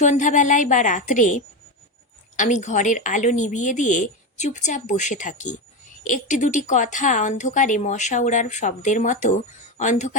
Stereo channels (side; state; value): both; normal; correlation 0.16